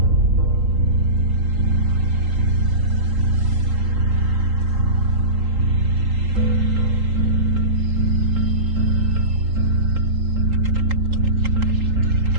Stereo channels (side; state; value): left; late; 3.8 ms